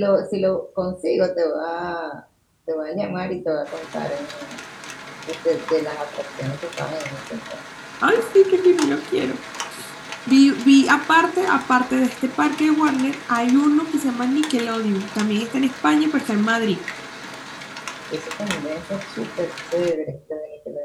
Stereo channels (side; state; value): both; identical; correlation 1.00